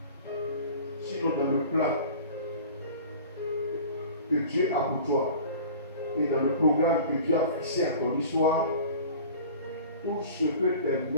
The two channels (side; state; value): both; inverted; correlation -0.41